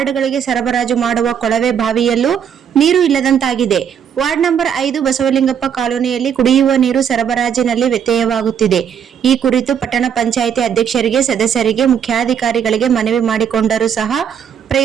ಸರಬರಾಜು ಮಾಡುವ ಕೊಳವೆ ಬಾವಿಯಲ್ಲೂ ನೀರು ಇಲ್ಲದಂತಾಗಿದೆ. ವಾರ್ಡ್ ನಂಬರ್ 5 ಬಸವಲಿಂಗಪ್ಪ ಕಾಲೋನಿಯಲ್ಲಿ ಕುಡಿಯುವ ನೀರು ಸರಬರಾಜಿನಲ್ಲಿ ವ್ಯತ್ಯಯವಾಗುತ್ತಿದೆ. ಈ ಕುರಿತು ಪಟ್ಟಣ ಪಂಚಾಯಿತಿ ಅಧ್ಯಕ್ಷರಿಗೆ, ಸದಸ್ಯರಿಗೆ, ಮುಖ್ಯಾಧಿಕಾರಿಗಳಿಗೆ ಮನವಿ ಮಾಡಿಕೊಂಡರೂ ಸಹ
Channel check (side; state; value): left; quieter; 8.1 dB